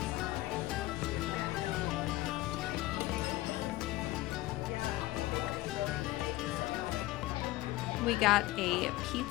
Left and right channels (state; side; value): quieter; right; 17.8 dB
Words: We got a